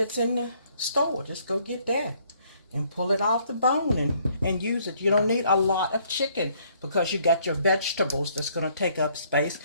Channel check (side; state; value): both; inverted; correlation -0.65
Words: in the store. Just go get that and pull it off the bone and use it. You don't need a lot of chicken because you got your vegetables that's going to take up space